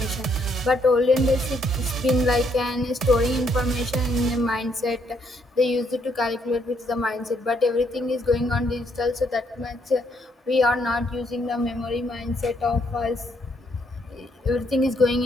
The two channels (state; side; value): normal; both; correlation 0.71